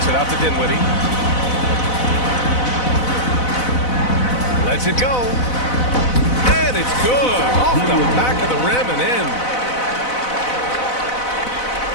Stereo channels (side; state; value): right; late; 4.0 ms